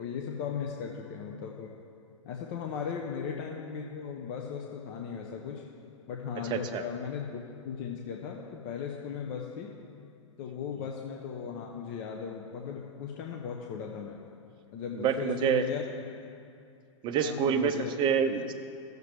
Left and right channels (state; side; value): normal; both; correlation 0.04